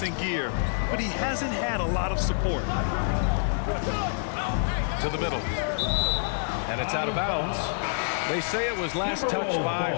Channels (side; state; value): right; silent; digital silence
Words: in gear, but he hasn't had a lot of support. To the middle. And it's out of bounds. They say it was last touched by